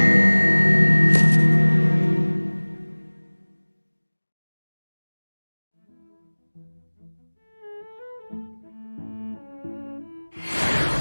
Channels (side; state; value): both; inverted; correlation -1.00